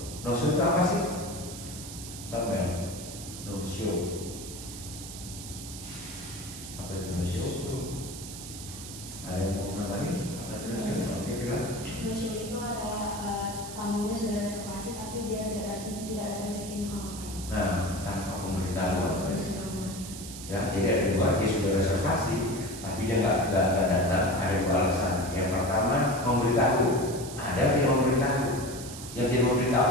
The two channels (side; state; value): right; noise; hiss, 11 dB below the sound